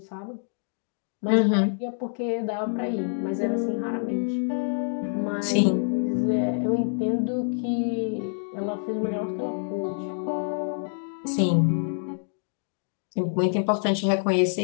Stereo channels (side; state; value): right; silent; digital silence